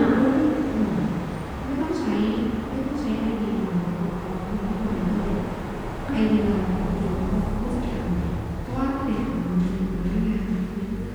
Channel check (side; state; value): both; identical; correlation 1.00